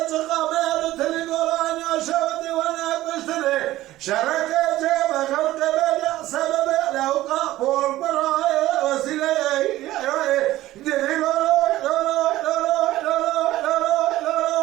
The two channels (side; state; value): left; quieter; 15.8 dB